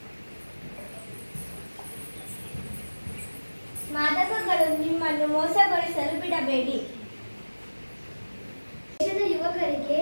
ಮಾದಕಗಳು ನಿಮ್ಮನ್ನು ಮೋಸಗೊಳಿಸಲು ಬಿಡಬೇಡಿ. ದೇಶದ ಯುವಕರಿಗೆ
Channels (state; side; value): inverted; both; correlation -1.00